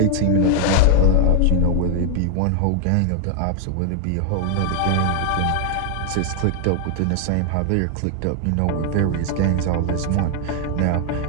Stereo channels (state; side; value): different; both; correlation 0.00